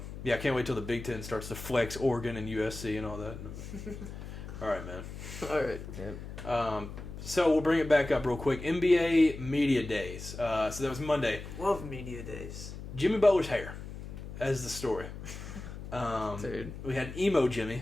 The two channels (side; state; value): left; noise; hum, 10 dB below the sound